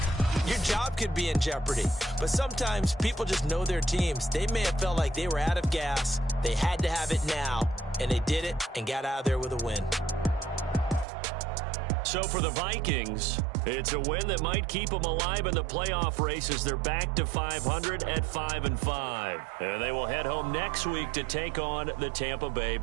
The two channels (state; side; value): drops out; left; at 11.1 s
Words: Your job could be in jeopardy. But sometimes people just know their teams. They may have felt like they were out of gas. They had to have it now. And they did it and got out of there with a win. So for the Vikings, it's a win that might keep them alive in the playoff race as they're back to 500 at 5-5. And they will head home next week to take on the Tampa Bay